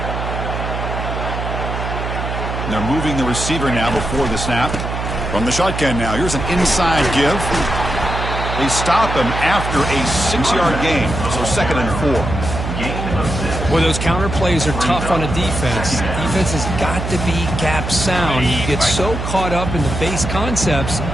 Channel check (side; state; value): right; noise; hum, 4 dB below the sound